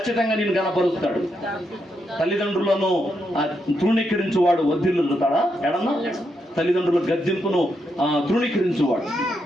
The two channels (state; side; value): normal; both; correlation 0.81